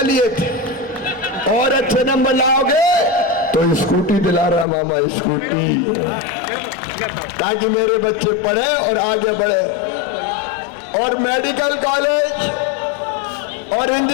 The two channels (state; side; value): drops out; right; at 4.7 s